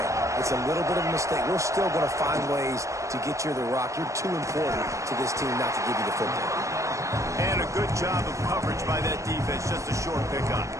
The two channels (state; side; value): late; left; 0.15 ms